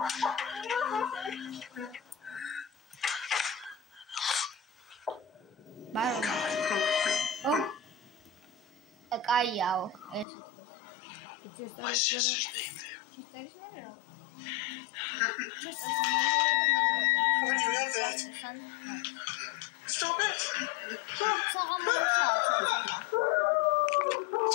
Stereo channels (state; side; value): drops out; right; at 10.2 s